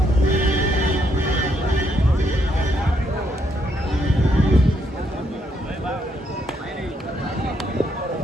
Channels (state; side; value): normal; both; correlation 0.75